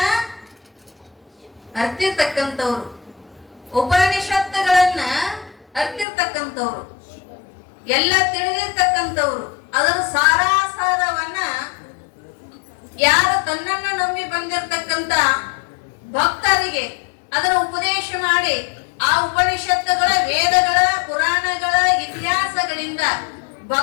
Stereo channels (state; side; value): drops out; right; at 6.1 s